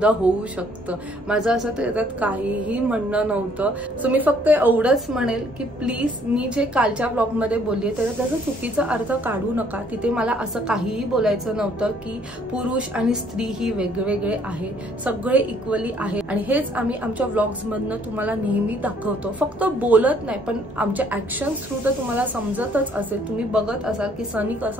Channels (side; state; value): both; normal; correlation 0.63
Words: होऊ शकतं. माझं असं त्याच्यात काहीही म्हणणं नव्हतं. सो मी फक्त एवढंच म्हणेल की प्लीज, मी जे कालच्या ब्लॉगमध्ये बोलली त्याचा चुकीचा अर्थ काढू नका. तिथे मला असं काहीही बोलायचं नव्हतं की पुरुष आणि स्त्री ही वेगवेगळे आहे, सगळे इक्वली आहे. आणि हेच आम्ही आमच्या व्लॉग्स मधनं तुम्हाला नेहमी दाखवतो, फक्त बोलत नाही, पण आमच्या ऍक्शन थ्रू तर तुम्हाला समजतच असेल, तुम्ही बघत असाल की सनी